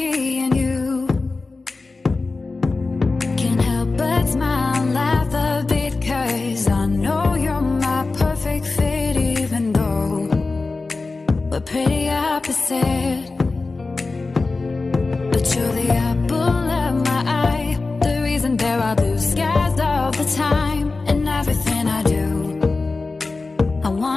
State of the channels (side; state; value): right; quieter; 3.7 dB